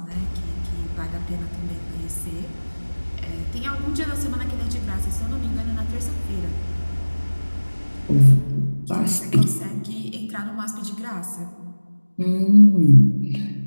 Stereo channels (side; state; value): both; inverted; correlation -1.00